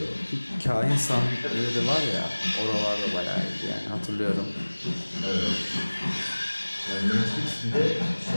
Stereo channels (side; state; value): both; inverted; correlation -1.00